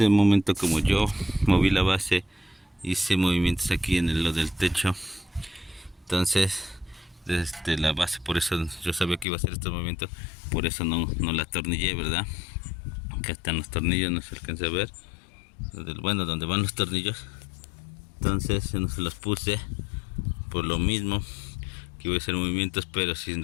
momento, como yo moví la base hice movimientos aquí en lo del techo. Entonces desde la base, por eso yo sabía que iba a hacer estos movimientos, por eso no la atornillé, ¿verdad? Acá están los tornillos, no se alcanza a ver, bueno, donde van los tornillos. Entonces no se los puse por lo mismo que voy a hacer movimientos, pero si en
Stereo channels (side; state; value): right; drops out; at 9.2 s